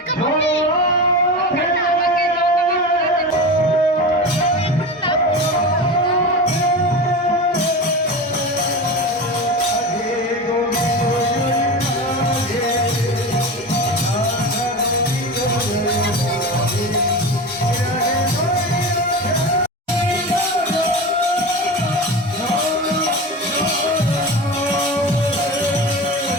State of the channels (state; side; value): normal; both; correlation 0.27